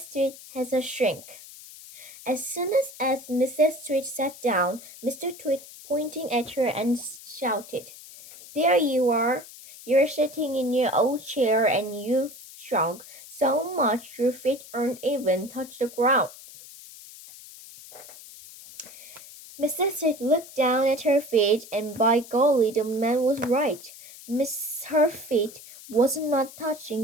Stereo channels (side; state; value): left; noise; hiss, 17 dB below the sound